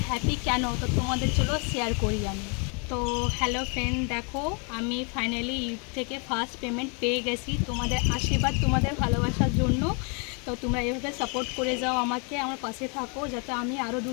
হ্যাপি কেন, তো তোমাদের চলো শেয়ার করি আমি। তো হ্যালো ফ্রেন্ড, দেখো আমি ফাইনালি ইউটিউব থেকে ফার্স্ট পেমেন্ট পেয়ে গেছি তোমাদের আশীর্বাদ, তোমাদের ভালোবাসার জন্য। তো তোমরা এভাবে সাপোর্ট করে যাও আমাকে, আমার পাশে থাকো যাতে আমি আরও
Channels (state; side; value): quieter; right; 35.7 dB